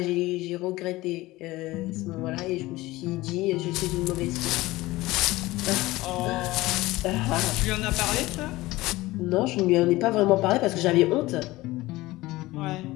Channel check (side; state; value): right; quieter; 19.0 dB